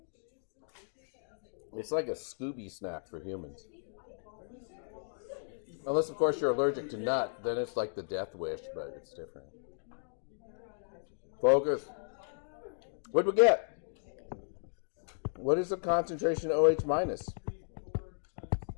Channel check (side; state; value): right; silent; digital silence